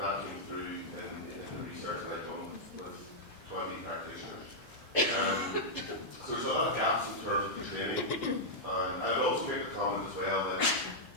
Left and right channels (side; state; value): both; normal; correlation -0.07